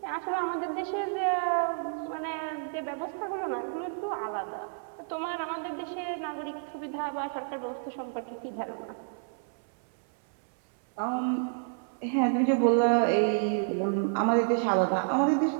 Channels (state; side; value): silent; left; 58 dB below the other